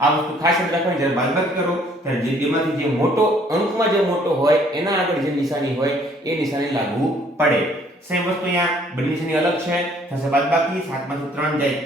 આ વસ્તુ ખાસ યાદ રાખવાની. જ્યારે બાદબાકી કરો ત્યારે જે બેમાંથી જે મોટો અંકમાં જે મોટો હોય એના આગળ જે નિશાની હોય એ નિશાની લાગુ પડે. સેમ વસ્તુ અહીંયા બંને નિશાની અલગ છે, થશે બાદબાકી. 7 માંથી 3 જાય,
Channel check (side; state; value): both; normal; correlation 0.61